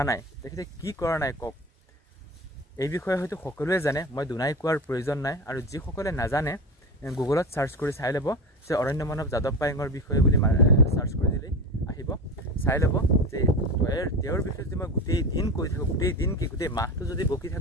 কৰা নাই কওক। এই বিষয়ে হয়তো সকলোৱে জানে, মই দুনাই কোৱাৰ প্ৰয়োজন নাই। আৰু যিসকলে নাজানে, গুগলত চাৰ্চ কৰি চাই ল'ব যে অৰণ্য মানৱ যাদৱ পায়েঙৰ বিষয়ে বুলি চাৰ্চ কৰি দিলেই আহিব। চাই ল'ব যে তেওঁৰ বিষয়ে যদি মই গোটেই দিন কৈ থাকোঁ, গোটেই মাহটো যদি বকি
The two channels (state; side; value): normal; both; correlation 0.26